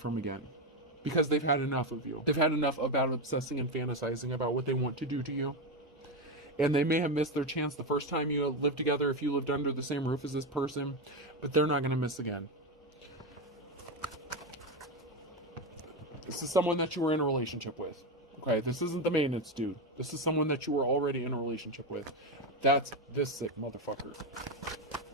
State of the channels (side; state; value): both; normal; correlation 0.12